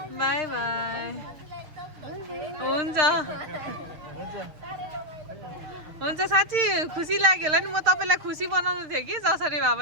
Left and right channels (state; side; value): late; left; 6.6 ms